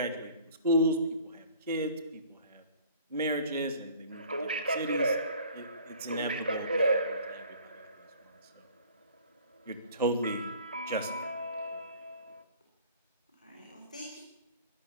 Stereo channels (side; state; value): both; inverted; correlation -0.50